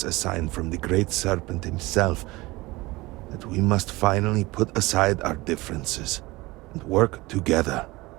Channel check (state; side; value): quieter; left; 21.1 dB